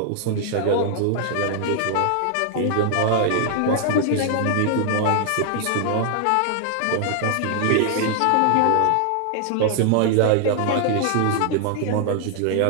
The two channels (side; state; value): both; different; correlation 0.00